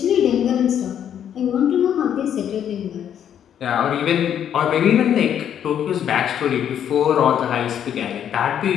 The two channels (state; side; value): quieter; right; 9.4 dB